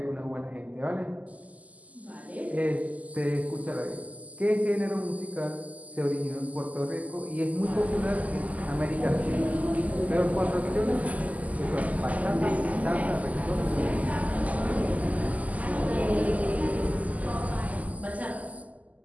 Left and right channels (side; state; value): left; late; 0.075 ms